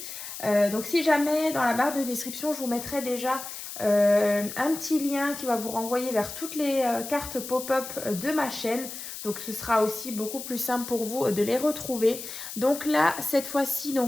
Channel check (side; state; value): left; noise; hiss, 9 dB below the sound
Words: Donc si jamais dans la barre de description, je vous mettrai déjà un petit lien qui va vous renvoyer vers toutes les cartes pop-up de ma chaîne. Donc ce sera aussi beaucoup plus simple pour vous de les retrouver. Donc là, cette fois-ci,